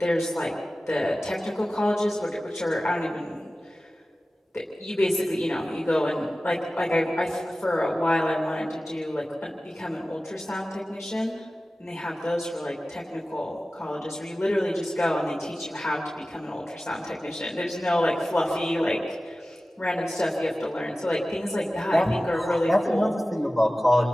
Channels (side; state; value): both; normal; correlation 0.96